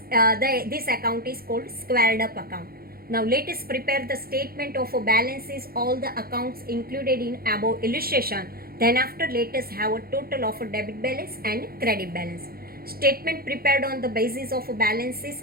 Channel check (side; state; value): left; late; 0.44 ms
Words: this account is called squared up account. Now, let us prepare the statement of balances, all the accounts included in above illustration. Then after, let us have a total of debit balance and credit balance. Statement prepared on the basis of balances